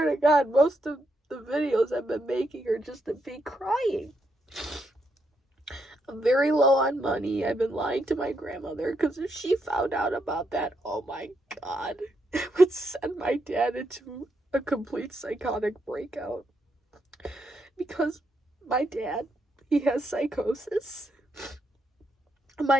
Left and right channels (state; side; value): normal; both; correlation 0.80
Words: to God, most of the videos I've been making are just of me crying. I'm very low on money. I've been lying to my grandmother because if she found out about that, oh my God, it would send my dad into a complete psychotic breakout. Because my dad, he has psychosis.